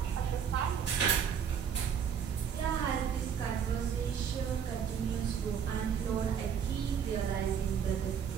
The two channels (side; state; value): left; quieter; 7.7 dB